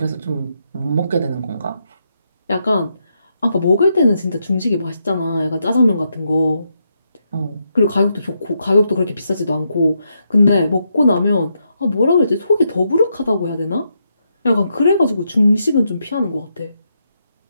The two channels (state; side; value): inverted; both; correlation -0.80